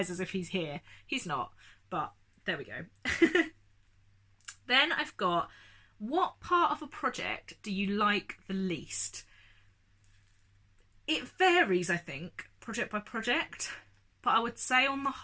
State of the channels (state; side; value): identical; both; correlation 1.00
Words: as if he's here. He's not, but there we go. Then I've got, what part of a project do you like the least? It varies, I think, project by project, but I would say on the